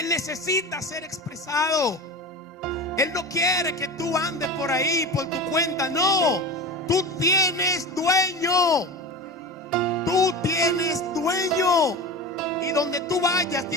necesita ser expresado. Él no quiere que tú andes por ahí por tu cuenta. No, tú tienes dueño. Tú tienes dueño. Y donde tú vayas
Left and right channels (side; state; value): both; normal; correlation 0.29